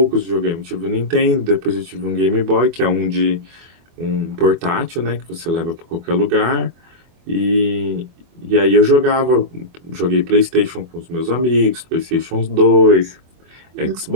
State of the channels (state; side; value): late; left; 24 ms